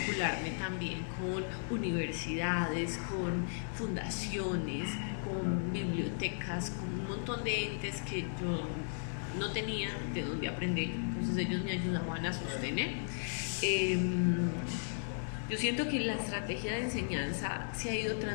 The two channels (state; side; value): silent; right; digital silence